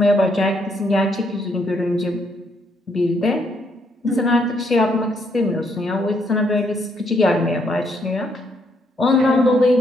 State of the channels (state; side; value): normal; both; correlation 0.73